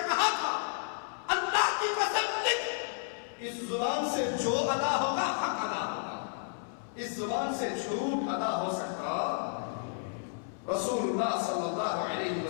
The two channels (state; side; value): silent; right; 56 dB below the other